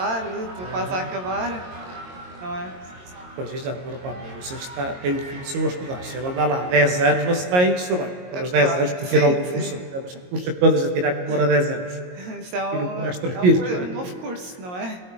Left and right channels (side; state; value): left; late; 22 ms